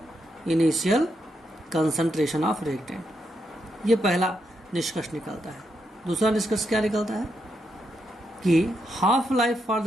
initial concentration of reactant. ये पहला निष्कर्ष निकलता है। दूसरा निष्कर्ष क्या निकलता है कि half life for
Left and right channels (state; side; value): normal; both; correlation 0.82